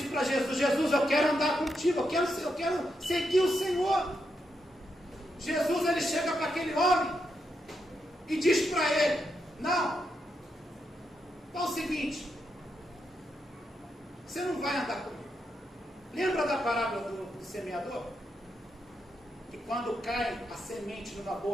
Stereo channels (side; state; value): both; normal; correlation 0.83